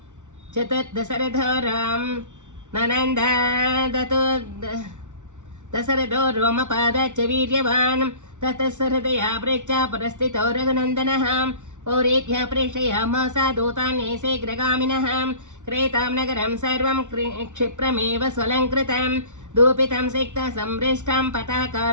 चतुर्दशरथो राम ननन्द दशरथो रोमपादाच्च वीर्यवान् ततः सहृदया प्रेक्षा परस्थितो रघुनन्दनः पौरेभ्यः प्रेषयामास दूतान् शीघ्रगामिनः क्रेतां नगरं सर्वं क्षिप्रमेव स्वलङ्कृतं दूपितं सिक्तं संपृष्टं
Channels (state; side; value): late; left; 0.85 ms